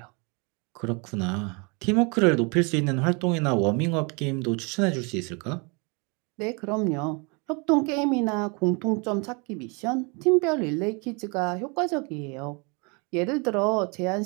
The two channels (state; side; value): quieter; left; 31.6 dB